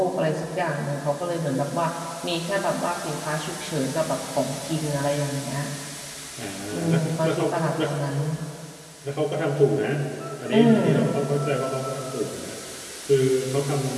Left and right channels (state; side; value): identical; both; correlation 1.00